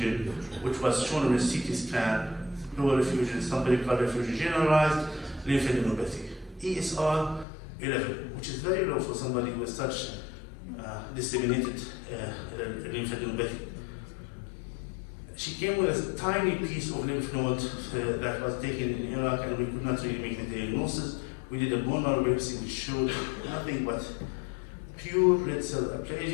which was shown on a CT scan, pleural effusion, some pericardial effusion generalized, lymphadenopathy. ESR 11, which is very low for somebody with such disseminated lymphadenopathy. She came with a tiny piece of lymph node that was taken in Iraq, and we could not really make the diagnosis. We did a bone marrow biopsy which showed nothing but pure red cell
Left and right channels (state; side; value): drops out; right; at 7.5 s